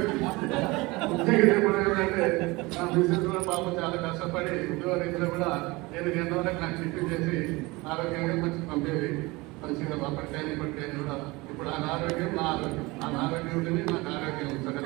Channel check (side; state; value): left; quieter; 23.1 dB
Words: నా బిజినెస్ లో పాపం చాలా కష్టపడి ఉద్యోగ రీతిలో కూడా నేను ఎంతవరకు నాకు టిఫిన్ చేసి ఆరోగ్యంగా మంచి పంపేది. మంచిగా అప్పటికైనా ఇప్పటికైనా కూడా ఇప్పుడు ఆ ఆరోగ్యం నా ఆరోగ్యం, ఆ ఆరోగ్యం ఉంటుంది, నాకు ఆరోగ్యం సగం